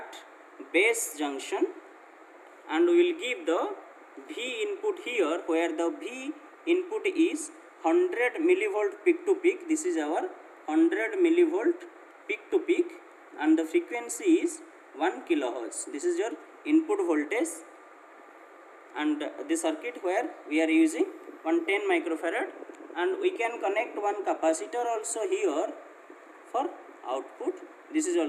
base junction, and we will give the V input here, where the V input is 100 millivolt peak to peak. This is our 100 millivolt peak to peak, and the frequency is 1 kilohertz. This is your input voltage, and the circuit where we are using 110 microfarad, and we can connect one capacitor also here for output. This is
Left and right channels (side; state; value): both; identical; correlation 1.00